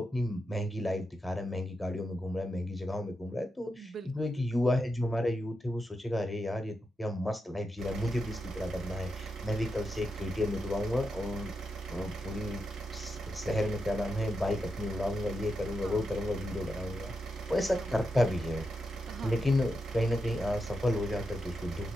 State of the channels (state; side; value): normal; both; correlation 0.86